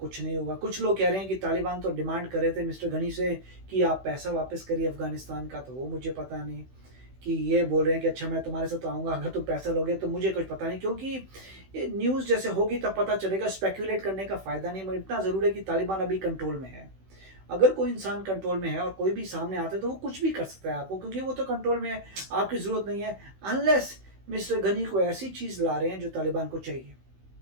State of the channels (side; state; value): left; late; 16 ms